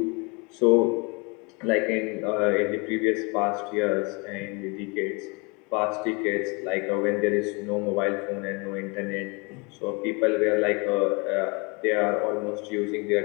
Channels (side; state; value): right; quieter; 29.9 dB